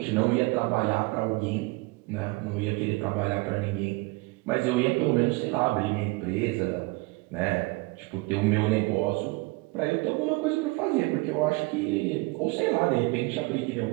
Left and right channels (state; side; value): quieter; left; 24.6 dB